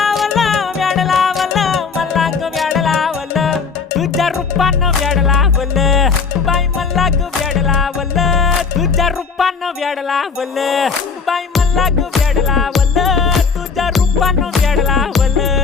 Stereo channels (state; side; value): quieter; right; 5.3 dB